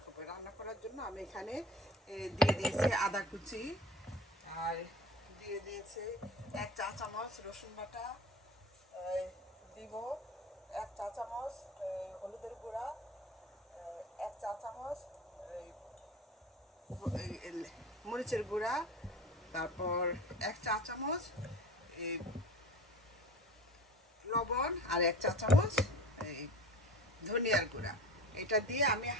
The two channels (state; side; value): normal; both; correlation 0.36